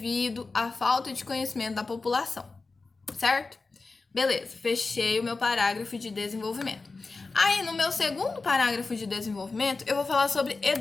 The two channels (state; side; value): quieter; right; 3.9 dB